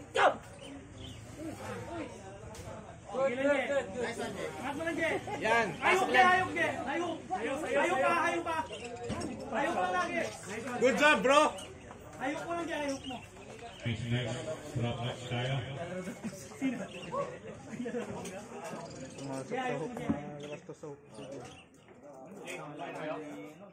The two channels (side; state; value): both; identical; correlation 1.00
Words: Go! Yan. Ayok ka, ayok ka. Ayok pa. Ayok pa lagi. Good job, bro. Ayok mo lang dyan, ayok mo. Next next. Drop match tayo.